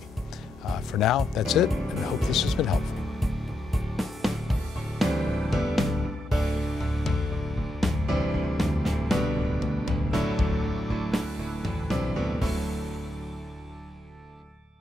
For now, that's it, and I hope this has been helpful.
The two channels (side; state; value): both; normal; correlation 0.83